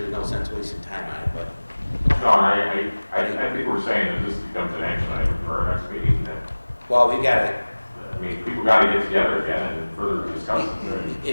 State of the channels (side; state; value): both; inverted; correlation -1.00